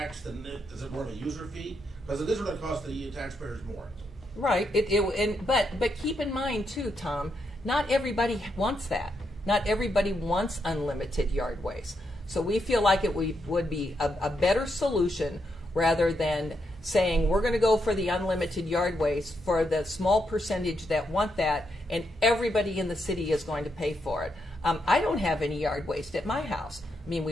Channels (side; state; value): both; normal; correlation 0.80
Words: then is it more of a user fee? Because it is going to cost the taxpayers more. Right. But keep in mind too, Tom, not everybody wants that. Not everybody wants unlimited yard waste. So we feel like it would be a better solution rather than saying we're going to go for the unlimited yard waste for the small percentage that want that, and everybody in the city is going to pay for it. I don't have any yard waste at my house. I mean,